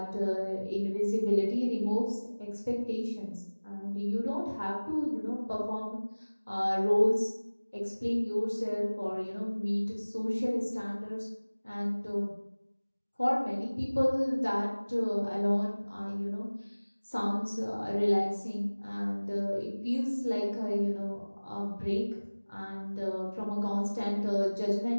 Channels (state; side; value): inverted; both; correlation -1.00